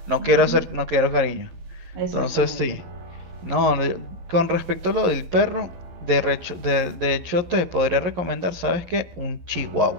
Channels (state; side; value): late; left; 11 ms